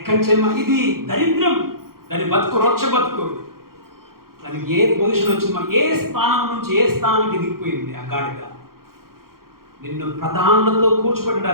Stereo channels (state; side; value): late; left; 0.93 ms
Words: చేయమా? ఇది దరిద్రం, దాని బతుకు రొచ్చ బతుకు. దానికి ఏ పొజిషన్ వచ్చిందో, ఏ స్థానం నుంచి ఏ స్థానానికి దిగిపోయింది ఆ గాడిద. నిన్ను ప్రధానులతో